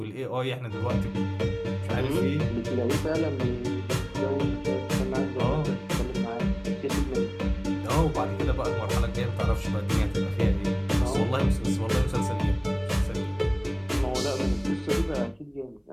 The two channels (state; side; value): identical; both; correlation 1.00